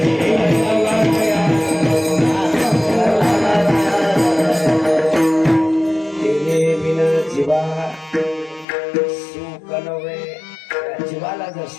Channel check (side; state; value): right; drops out; at 8.7 s